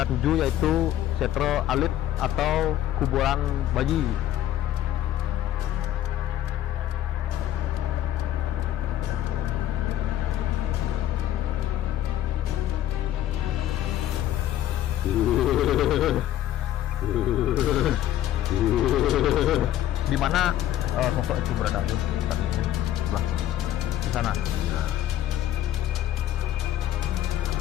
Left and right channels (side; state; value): right; quieter; 12.4 dB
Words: tuju, yaitu Setro Alit atau kuburan bayi. Di mana sosok itu berada? Sebelah di sana.